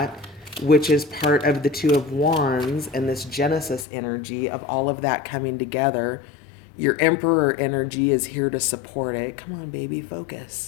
which is part of the Two of Wands and this Genesis energy of all of that coming together. Your Emperor energy is here to support it. Come on, baby,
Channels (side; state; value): right; drops out; at 3.9 s